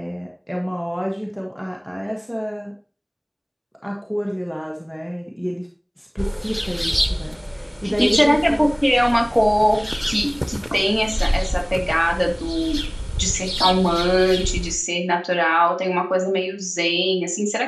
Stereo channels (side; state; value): both; identical; correlation 1.00